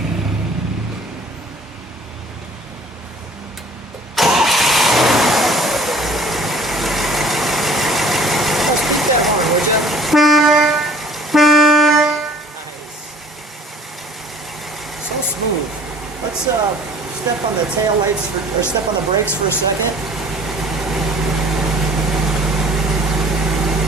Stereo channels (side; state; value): both; normal; correlation 0.51